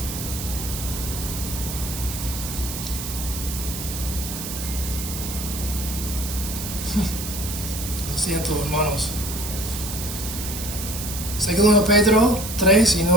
Lo siento, hermanos. Segundo Pedro 3 y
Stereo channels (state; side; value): noise; right; hiss, 7 dB below the sound